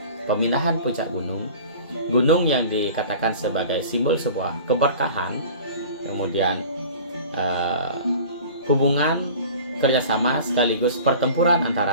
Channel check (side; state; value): both; inverted; correlation -0.41